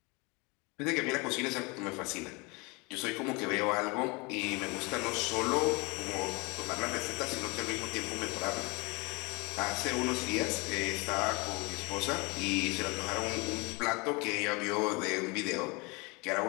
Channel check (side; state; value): right; quieter; 27.7 dB